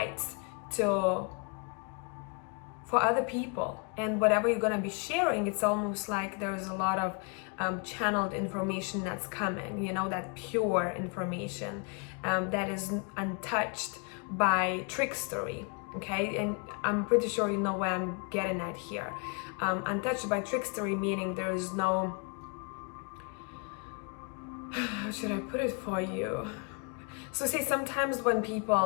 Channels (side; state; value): right; quieter; 35.6 dB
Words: for other people, and whatever you're going to be sharing, it's almost like there's a lot of channeled information that's coming, you know, that pure information that is untouched by trickstery. okay? And I'm pretty sure you know where I'm getting at here. Untouched by trickstery, meaning there is no, how should I put it for you? So say sometimes when